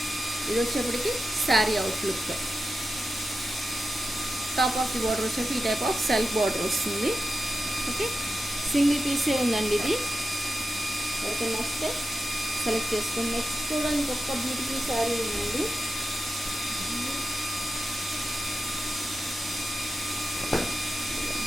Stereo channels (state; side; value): normal; both; correlation 0.90